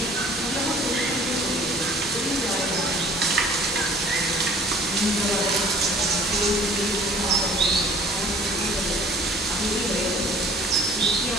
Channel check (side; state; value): both; normal; correlation 0.51